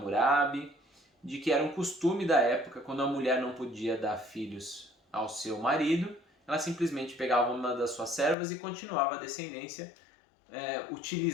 de que era um costume da época, quando a mulher não podia dar filhos ao seu marido, ela simplesmente pegava uma das suas servas e continuava a descendência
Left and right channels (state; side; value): drops out; right; at 8.3 s